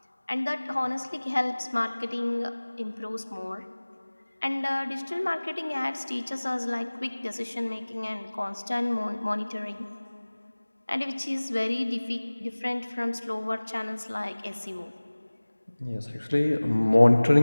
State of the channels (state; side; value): inverted; both; correlation -1.00